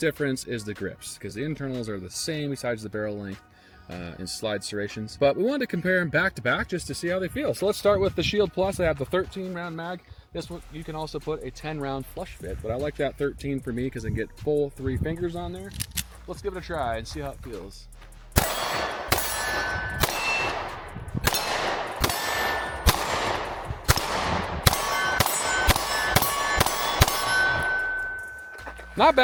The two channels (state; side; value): identical; both; correlation 1.00